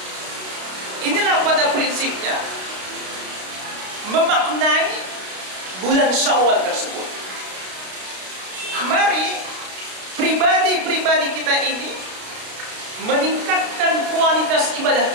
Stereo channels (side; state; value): left; late; 32 ms